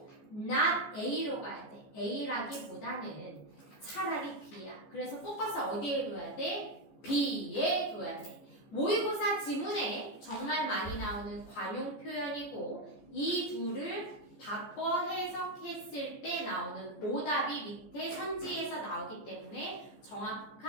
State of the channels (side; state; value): right; late; 14 ms